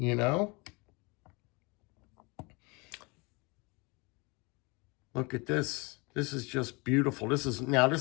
know? Look at this. This is just beautiful. This is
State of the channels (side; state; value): right; quieter; 27.8 dB